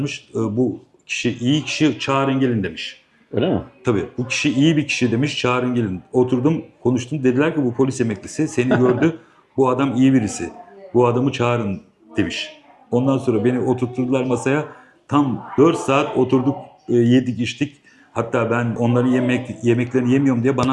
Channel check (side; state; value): both; identical; correlation 1.00